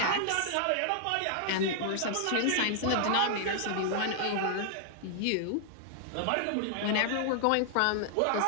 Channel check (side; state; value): both; different; correlation -0.01